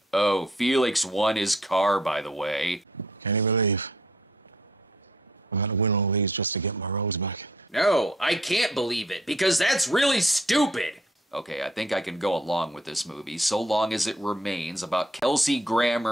Oh, Felix won his car, by the way. Can't you believe I've had to win all these just to get my rose back? No, I can't believe it, because that's really stupid. Okay, I think I can go along with this movie, so long as it remains about Kelsey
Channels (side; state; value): both; normal; correlation 0.63